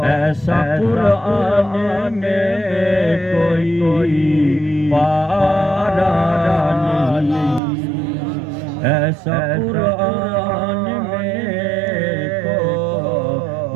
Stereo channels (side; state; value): left; drops out; at 7.6 s